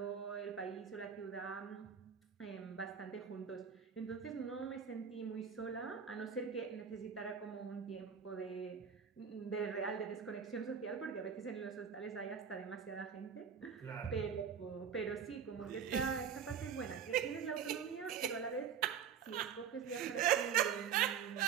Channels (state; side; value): quieter; left; 7.5 dB